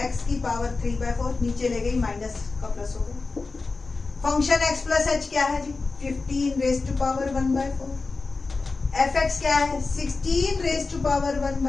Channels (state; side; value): quieter; right; 3.9 dB